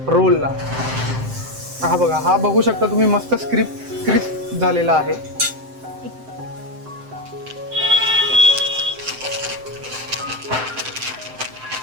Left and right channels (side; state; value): left; late; 7.7 ms